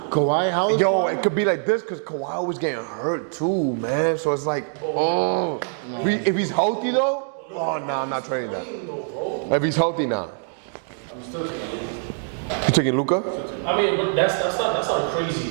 Kawhi, how is Yo, it could be like this because Kawhi was getting hurt too, man. So it's like, if he's healthy though, oh no, I'm not trading that. If he's healthy now, you taking Luka? I mean, but that's not a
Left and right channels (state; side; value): silent; left; 61 dB below the other